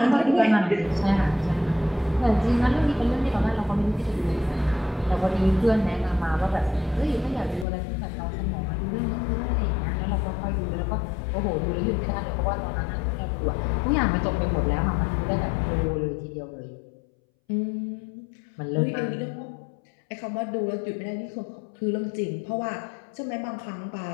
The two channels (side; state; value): right; drops out; at 7.7 s